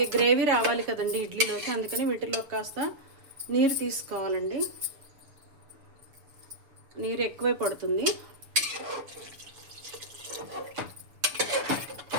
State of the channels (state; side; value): late; left; 6.9 ms